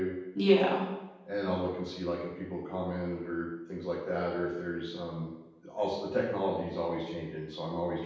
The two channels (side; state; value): both; identical; correlation 1.00